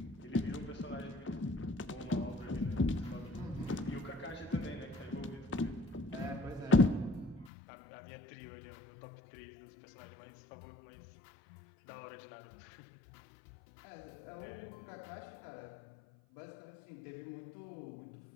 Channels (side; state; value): right; drops out; at 7.5 s